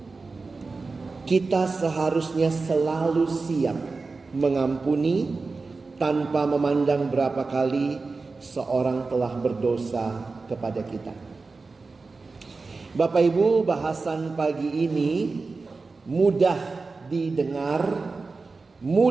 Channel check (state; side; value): quieter; left; 4.0 dB